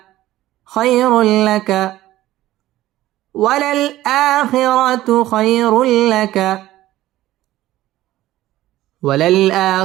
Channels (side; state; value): left; quieter; 15.2 dB